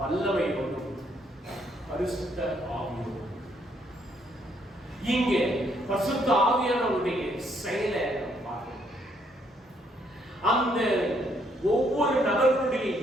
பரிசுத்த ஆவியோடும். இங்கே பரிசுத்த ஆவியானவருடைய செயலை பார்க்கிறோம். அந்த ஒவ்வொரு நபர்களுடைய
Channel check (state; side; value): normal; both; correlation 0.70